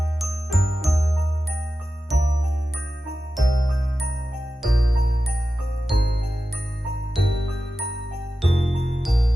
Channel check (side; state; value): both; normal; correlation 0.93